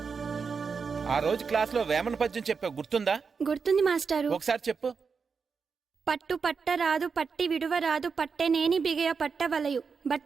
ఆ రోజు క్లాస్లో వేమన పద్యం చెప్పావు, గుర్తుందా? గుర్తుంది మాస్టారు. ఒకసారి చెప్పు. పట్టు పట్టరాదు పట్టి విడువరాదు పట్టెనేని బిగయ పట్టవలయు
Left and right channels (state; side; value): quieter; left; 5.5 dB